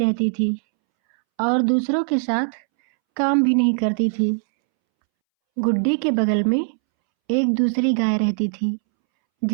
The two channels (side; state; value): left; silent; 65 dB below the other